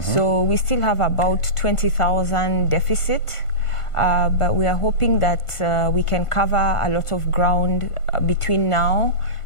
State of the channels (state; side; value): late; right; 1.5 ms